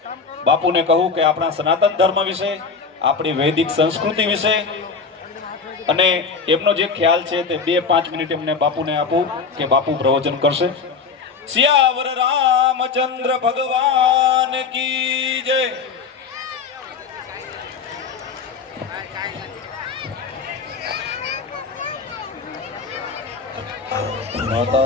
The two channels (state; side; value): quieter; right; 5.1 dB